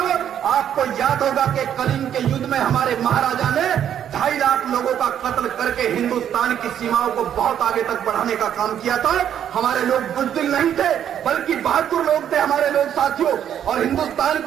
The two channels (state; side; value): quieter; left; 9.7 dB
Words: आपको याद होगा कि कलिंग के युद्ध में हमारे महाराजा ने 2.5 लाख लोगों का कत्ल करके हिंदुस्तान की सीमाओं को बहुत आगे तक बढ़ाने का काम किया था। हमारे लोग बुज़दिल नहीं थे, बल्कि बहादुर लोग थे हमारे लोग साथियों। और हिंदुस्तान